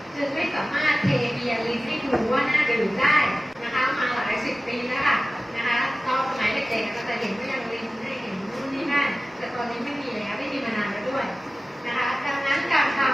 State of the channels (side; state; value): both; normal; correlation 0.96